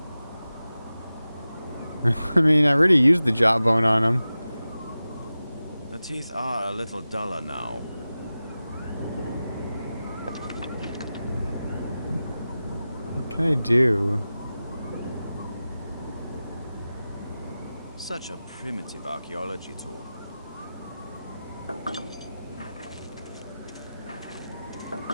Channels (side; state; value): both; inverted; correlation -0.95